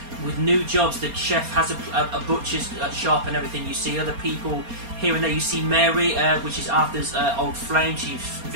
with new jobs. The chef has a butcher's shop and everything. You see other people here and there. You see Mary, which is Arthur's old flame. She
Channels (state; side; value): late; left; 4.3 ms